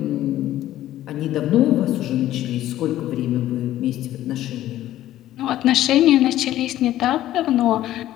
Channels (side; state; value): right; quieter; 13.7 dB